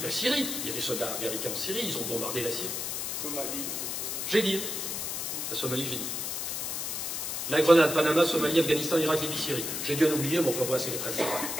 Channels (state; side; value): noise; left; hiss, 3 dB below the sound